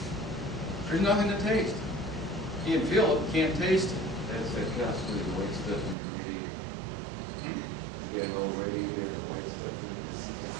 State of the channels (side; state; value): left; drops out; at 6.0 s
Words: There's nothing to taste. You can feel it, but can't taste it. That's that constantly the white stuff in the radiator. You get all radiator, the white stuff in the system.